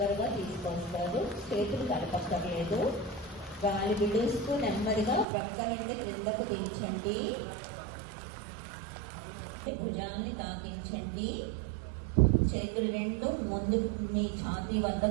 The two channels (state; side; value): drops out; left; at 5.2 s